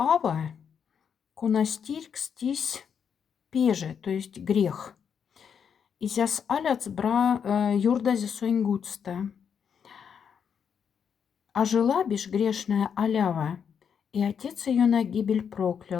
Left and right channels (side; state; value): right; quieter; 7.3 dB